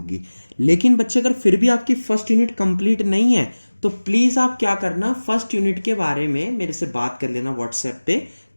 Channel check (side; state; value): both; inverted; correlation -1.00